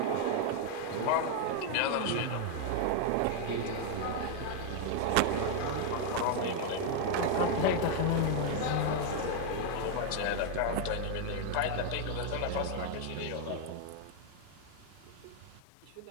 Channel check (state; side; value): different; both; correlation 0.00